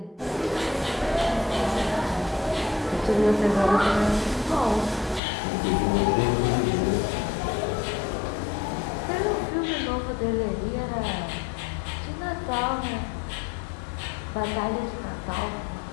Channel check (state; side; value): drops out; right; at 5.2 s